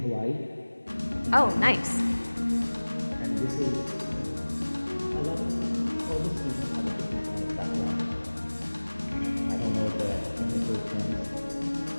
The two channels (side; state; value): both; inverted; correlation -1.00